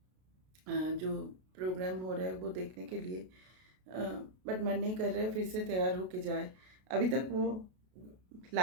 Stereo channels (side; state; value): left; late; 32 ms